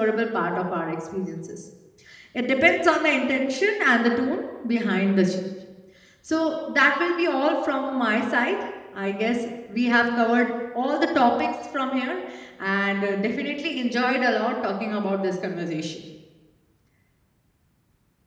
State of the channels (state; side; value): identical; both; correlation 1.00